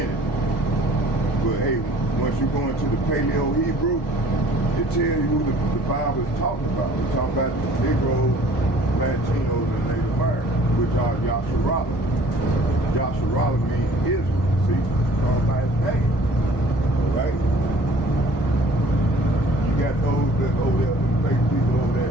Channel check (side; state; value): both; normal; correlation 0.53